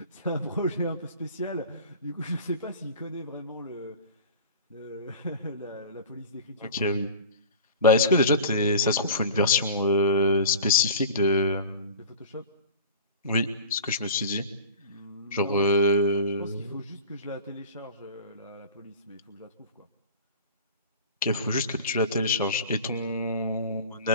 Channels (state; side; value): inverted; both; correlation -0.38